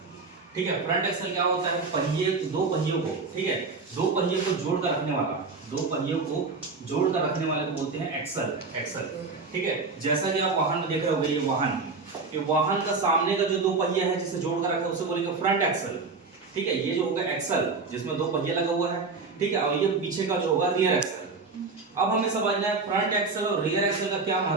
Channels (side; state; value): left; quieter; 4.2 dB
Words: ठीक है। फ्रंट एक्सल क्या होता है? पहिए, दो पहियों को, ठीक है, दो पहियों को जोड़ कर रखने वाला, दो पहियों को जोड़ कर रखने वाले को बोलते हैं एक्सल, एक्सल, ठीक है। जैसा कि आप वाहन में देख रहे होंगे, ये वाहन, ये वाहन का सामने का जो दो पहिया है जिसे जोड़ कर रखा है उसे बोलेंगे फ्रंट एक्सल, ठीक है। ये जो होगा एक्सल जिसमें दो पहिया लगा हुआ है, ठीक है, और ये पीछे का जो होगा रियर एक्सल। अब हमें समझना है फ्रंट एक्सल और रियर एक्सल का क्या